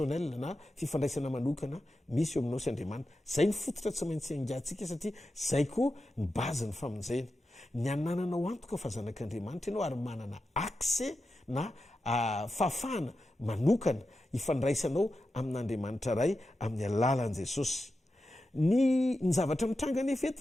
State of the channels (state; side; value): normal; both; correlation 0.91